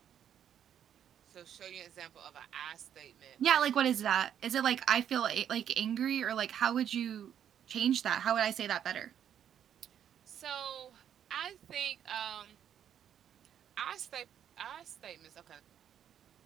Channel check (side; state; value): left; quieter; 9.4 dB